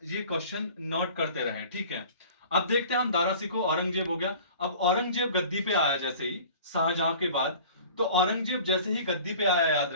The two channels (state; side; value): inverted; both; correlation -0.44